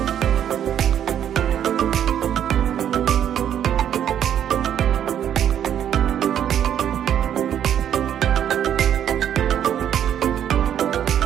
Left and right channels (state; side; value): quieter; left; 9.8 dB